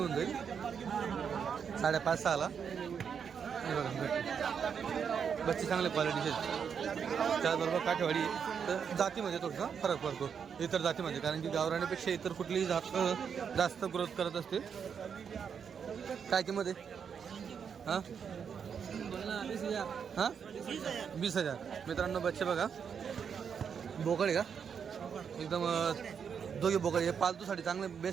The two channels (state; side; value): quieter; left; 7.0 dB